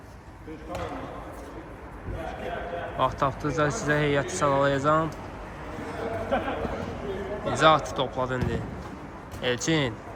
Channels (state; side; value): identical; both; correlation 1.00